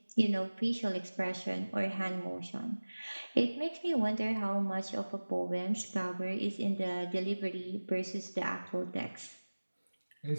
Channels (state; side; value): inverted; both; correlation -1.00